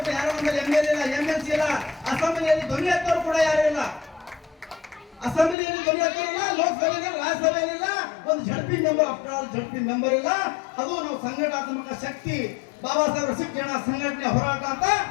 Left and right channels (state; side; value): drops out; right; at 5.6 s